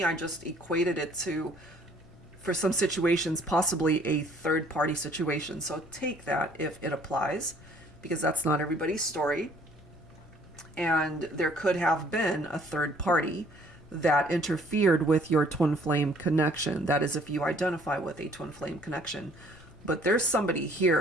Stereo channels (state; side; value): noise; left; rumble, 23 dB below the sound